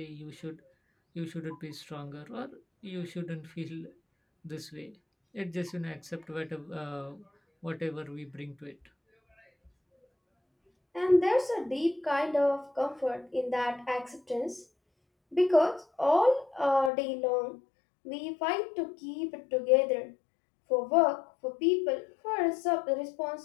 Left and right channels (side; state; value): right; drops out; at 16.9 s